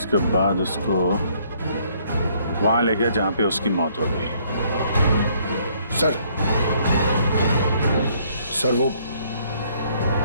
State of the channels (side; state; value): both; inverted; correlation -0.65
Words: बाद उसको वहां ले गया जहां पे उसकी मौत हो गई। सर वो